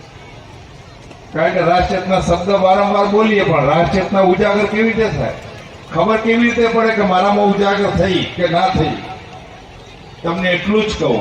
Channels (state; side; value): identical; both; correlation 1.00